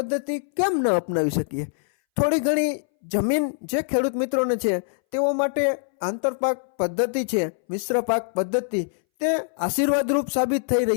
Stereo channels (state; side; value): silent; right; 61 dB below the other